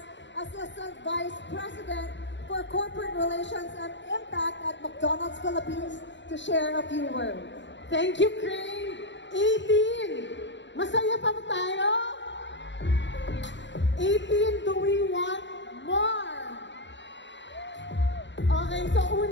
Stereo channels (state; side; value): late; right; 0.53 ms